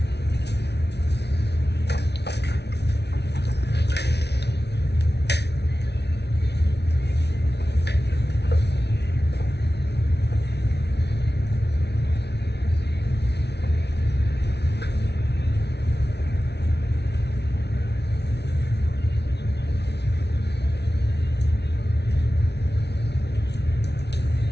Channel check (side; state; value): right; late; 0.49 ms